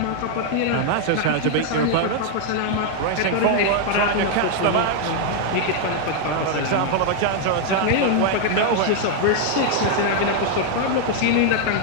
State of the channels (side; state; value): both; different; correlation 0.00